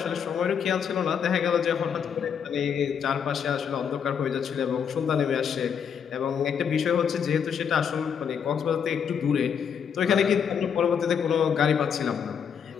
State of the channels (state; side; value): quieter; right; 7.5 dB